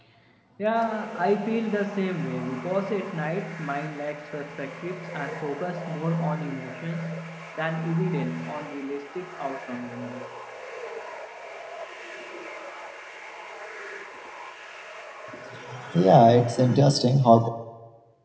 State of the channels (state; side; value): identical; both; correlation 1.00